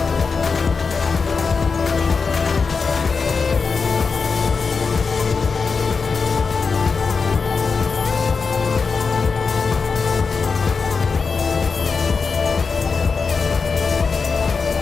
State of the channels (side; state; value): right; quieter; 5.0 dB